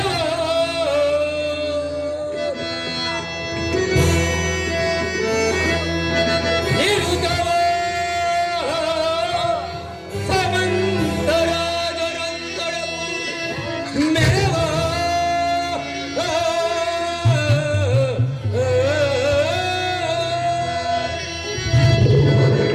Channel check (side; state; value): both; identical; correlation 1.00